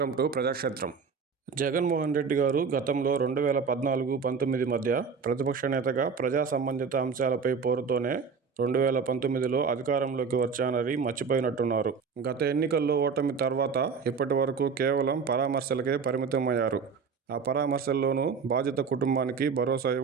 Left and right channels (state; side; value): quieter; left; 5.7 dB